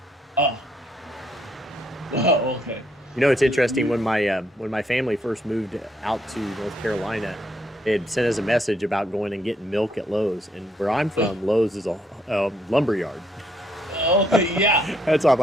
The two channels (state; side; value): normal; both; correlation 0.72